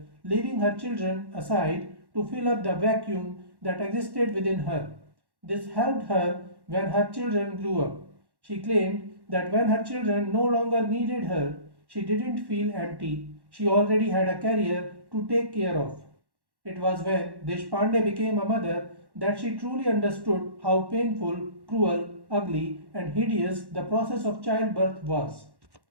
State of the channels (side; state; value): left; late; 1.1 ms